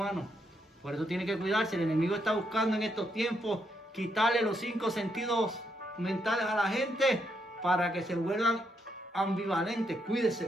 Por eso tiene que cuidarse. El enemigo está buscando en estos tiempos quitarle los 5 sentidos mentales a la gente para que se vuelvan ambivalentes. Cuídese,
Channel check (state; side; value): normal; both; correlation 0.78